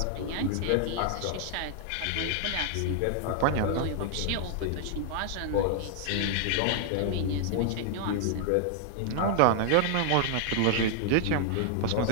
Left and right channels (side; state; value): both; different; correlation 0.00